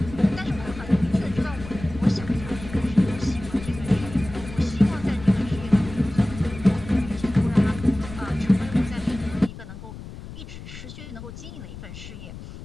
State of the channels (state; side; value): noise; left; rumble, 13 dB below the sound